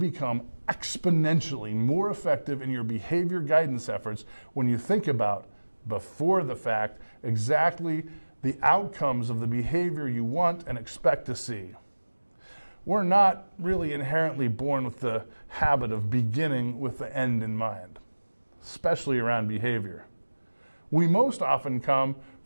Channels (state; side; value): inverted; both; correlation -1.00